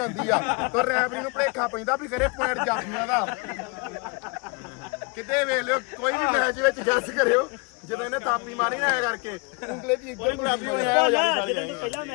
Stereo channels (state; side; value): quieter; right; 30.4 dB